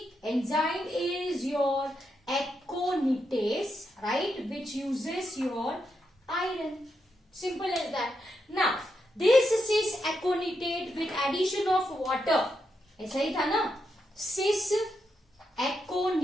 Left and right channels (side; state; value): both; normal; correlation 0.83